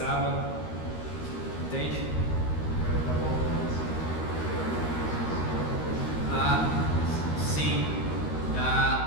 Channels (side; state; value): right; late; 13 ms